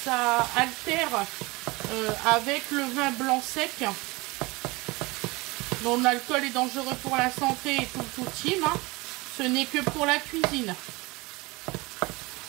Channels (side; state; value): left; quieter; 23.7 dB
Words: altère avec le vin blanc sec. dont l'alcool est dangereux pour la santé et tout team. Hein. Ce n'est que pour la cuisine.